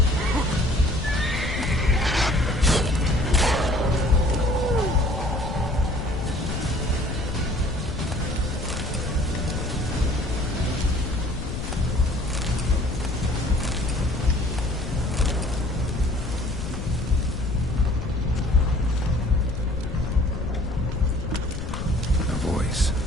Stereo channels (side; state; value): left; noise; rumble, 6 dB below the sound